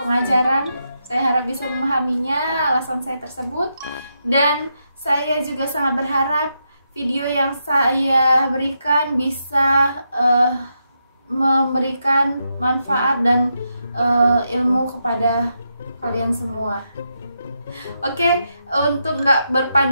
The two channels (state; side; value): inverted; both; correlation -0.83